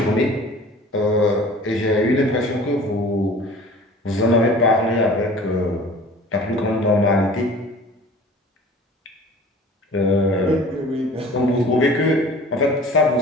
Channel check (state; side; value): normal; both; correlation 0.44